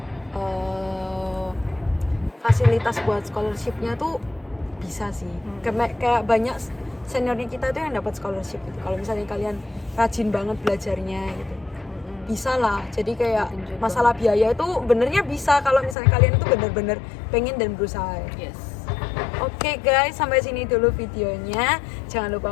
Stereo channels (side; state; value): right; drops out; at 16.0 s